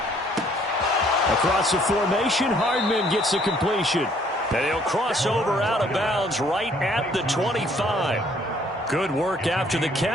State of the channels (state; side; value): normal; both; correlation 0.62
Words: Across the formation, Hardman gets the completion. And he'll cross over out of bounds right at the 25. Good work after the